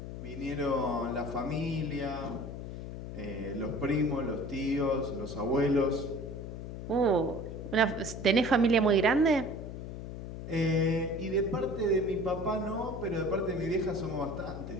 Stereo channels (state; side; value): noise; left; hum, 8 dB below the sound